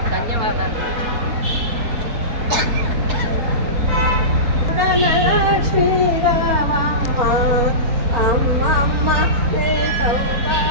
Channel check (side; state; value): left; late; 4.3 ms